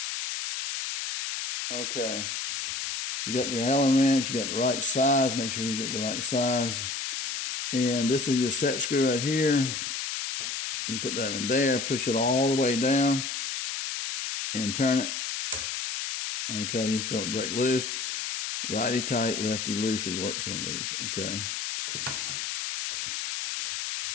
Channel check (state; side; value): noise; left; hiss, 3 dB below the sound